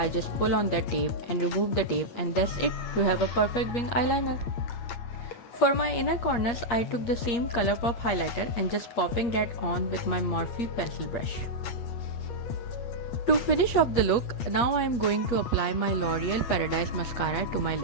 just pull on that tape and remove the tape, and that's it. You have a perfect wing eyeliner. For my inner corners, I took the same Colourpop highlighter and just popping that on with my Morphe pencil brush. To finish off the look, now I am going to apply my L'Oreal Paradise Mascara to my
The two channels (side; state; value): right; late; 8.4 ms